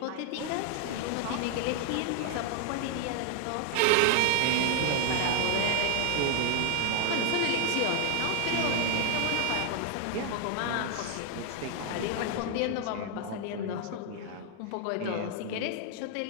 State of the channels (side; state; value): both; different; correlation 0.00